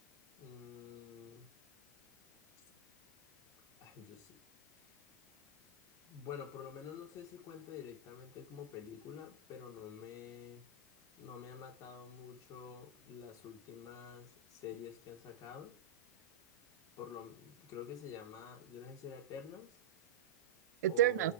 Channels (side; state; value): left; quieter; 5.9 dB